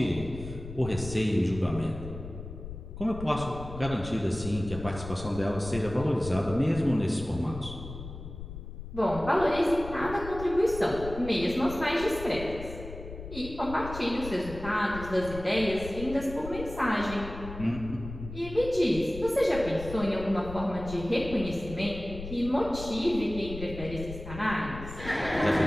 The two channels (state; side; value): noise; left; rumble, 11 dB below the sound